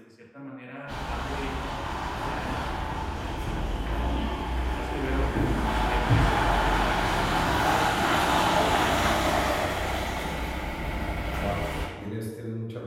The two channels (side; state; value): both; identical; correlation 1.00